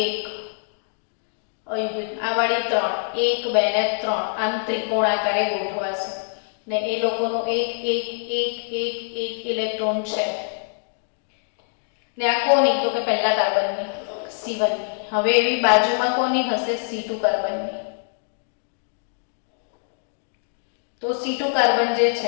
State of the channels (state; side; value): silent; right; 62 dB below the other